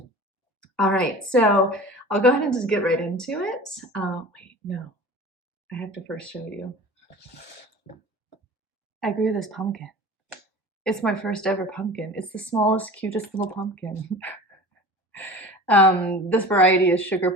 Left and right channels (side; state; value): both; normal; correlation 0.38